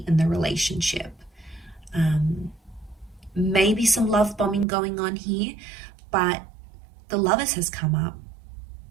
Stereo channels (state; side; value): drops out; left; at 4.7 s